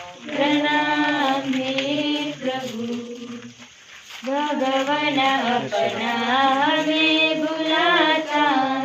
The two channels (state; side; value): identical; both; correlation 1.00